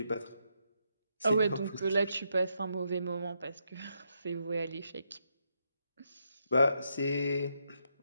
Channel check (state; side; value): inverted; both; correlation -0.80